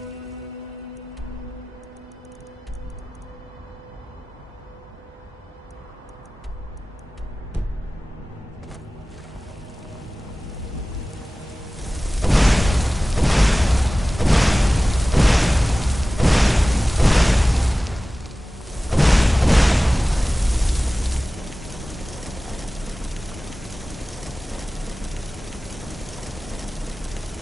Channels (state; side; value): normal; both; correlation 0.97